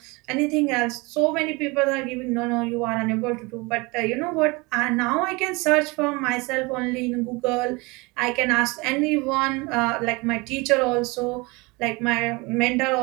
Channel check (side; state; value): left; quieter; 25.8 dB